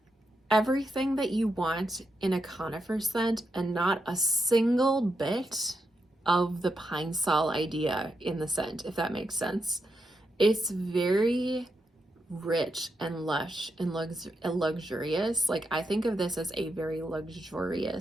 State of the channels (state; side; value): normal; both; correlation 0.84